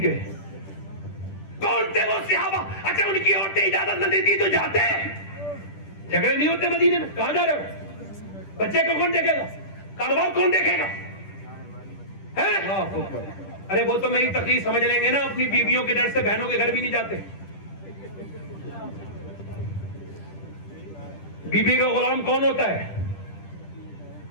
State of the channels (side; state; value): right; late; 10 ms